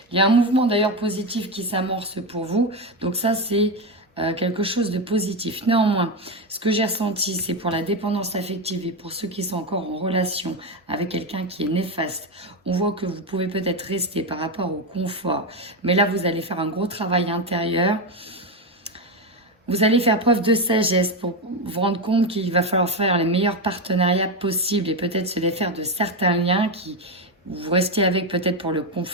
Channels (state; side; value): normal; both; correlation 0.12